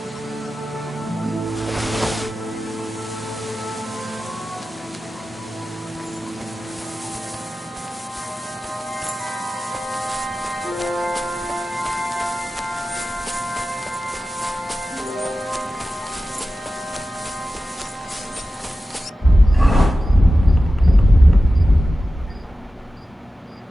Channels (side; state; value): both; normal; correlation 0.94